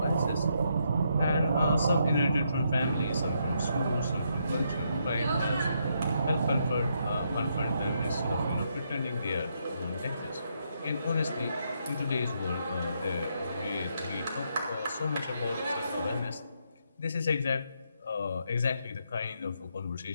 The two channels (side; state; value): both; inverted; correlation -0.77